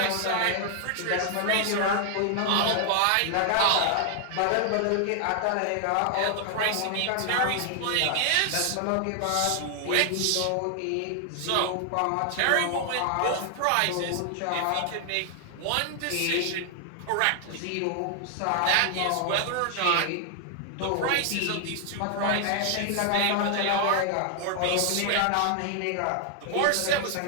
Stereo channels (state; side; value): different; both; correlation 0.00